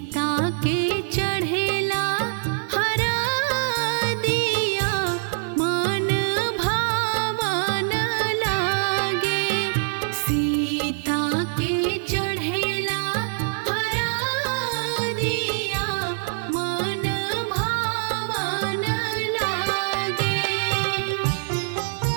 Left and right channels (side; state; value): left; silent; digital silence